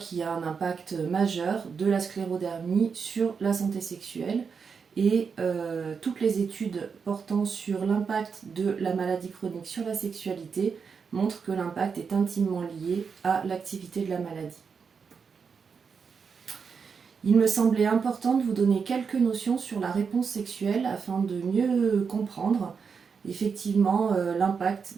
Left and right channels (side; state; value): left; quieter; 5.9 dB